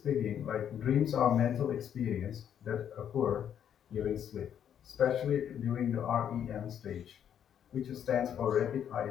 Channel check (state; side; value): quieter; right; 9.2 dB